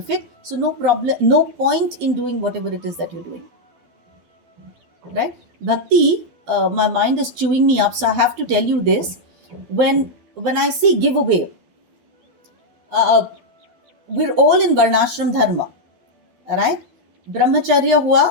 it. So no problem, no point in doing whatever it is that you're doing. Right? Bhakti, my mind is chewing me up, so I have to tell you this. When I say giveaway, we're all in Varnashram Dharma. Right? Brahmacharya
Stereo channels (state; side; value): late; left; 12 ms